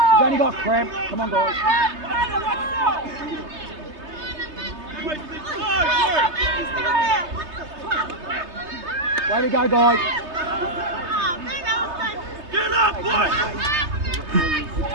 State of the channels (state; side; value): late; left; 3.3 ms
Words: only got cramp. Come on, guys. Way to go, guys. Get up, boy!